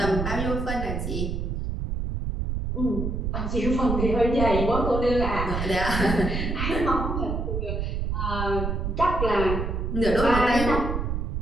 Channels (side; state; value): right; noise; rumble, 2 dB below the sound